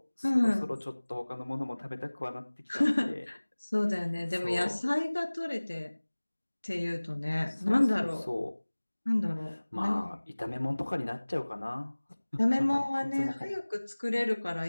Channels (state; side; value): inverted; both; correlation -1.00